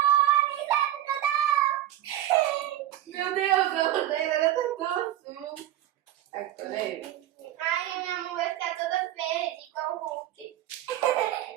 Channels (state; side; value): quieter; left; 12.9 dB